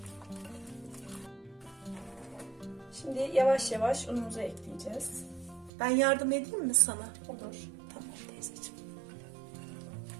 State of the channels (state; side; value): drops out; left; at 5.7 s